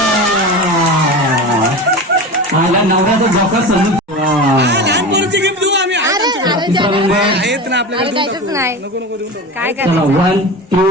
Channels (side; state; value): both; normal; correlation 0.28